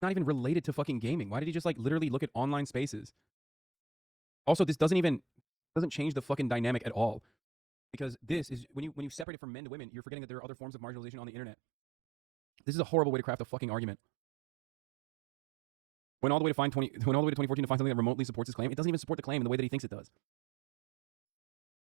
not even related to fucking gaming. Why did he just like literally look at online spaces? Also, this doesn't change the fucking dynamic at all. Because this is, when you separate it from men to women, you're forgetting that there are other forms of marginalization on the internet. This is a horrible way to craft a fucking argument. Went all the way to 2014 to find something that remotely supports his claim. It doesn't even support the claim in the way that he thinks it does.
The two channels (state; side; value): drops out; left; at 9.2 s